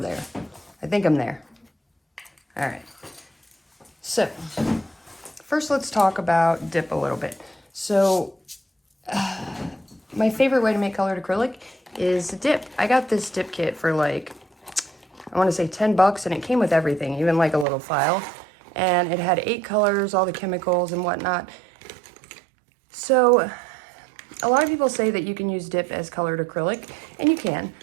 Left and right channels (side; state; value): left; drops out; at 17.7 s